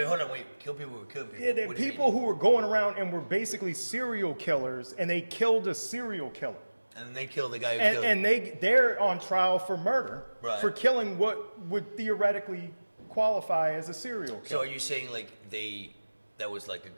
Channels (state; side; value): inverted; both; correlation -1.00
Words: hold on, kill people who kill people. Yeah, people who were going around and were basically serial killers, and they killed a serial killer. And they killed the guy who killed him. And they're on trial for murder, right, for killing what would theoretically qualify as a serial killer. So are you saying like that was like